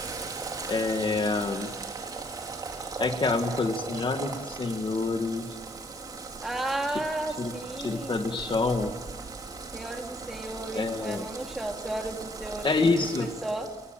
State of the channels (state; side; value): normal; both; correlation 0.66